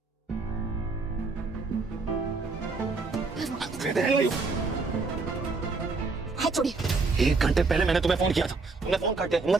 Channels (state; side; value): quieter; left; 4.0 dB